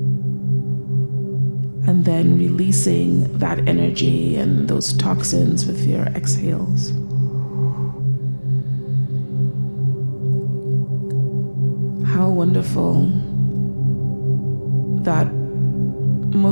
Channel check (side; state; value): both; inverted; correlation -1.00